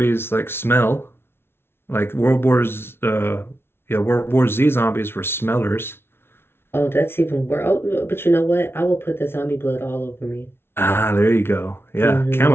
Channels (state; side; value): late; right; 0.12 ms